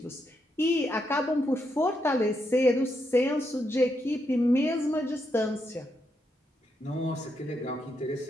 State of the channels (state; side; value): normal; both; correlation 0.81